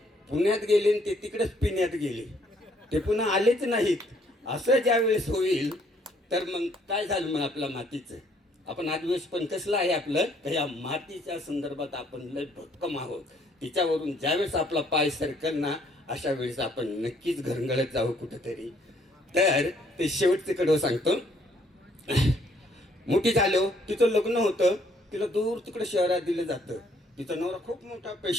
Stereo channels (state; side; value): normal; both; correlation 0.66